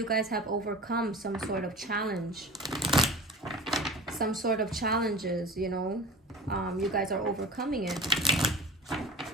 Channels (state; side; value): normal; both; correlation 0.37